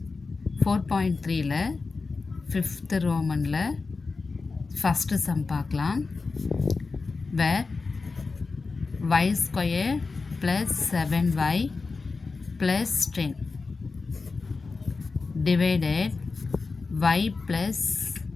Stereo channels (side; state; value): right; quieter; 4.2 dB